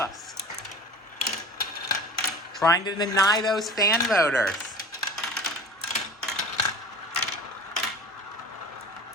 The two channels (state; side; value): normal; both; correlation 0.38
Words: Trying to deny those fan voters.